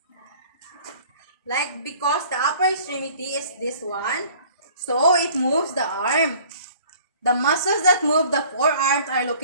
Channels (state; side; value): inverted; both; correlation -0.51